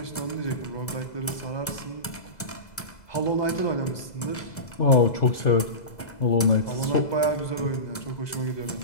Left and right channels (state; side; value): late; right; 2.0 ms